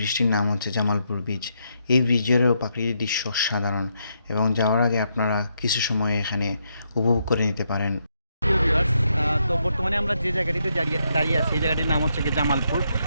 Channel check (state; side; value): inverted; both; correlation -0.78